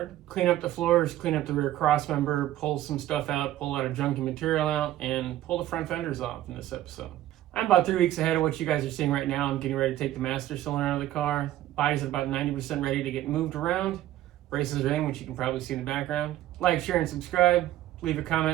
Clean up the floors, clean up the rear crossmember, pull some stuff out, pull out of junky material out, and pull the front fenders off in this episode. I'm about 3 weeks ahead of what you guys are seeing right now. I'm getting ready to take the master cylinder out of the car. Body's at about 90% ready to get moved around. Braces are in, which you can probably see in the background. Like, share, and subscribe. Leave a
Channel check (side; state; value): left; quieter; 13.9 dB